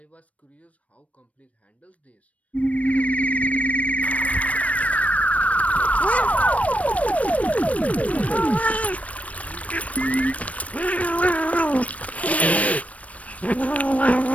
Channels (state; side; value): late; right; 0.066 ms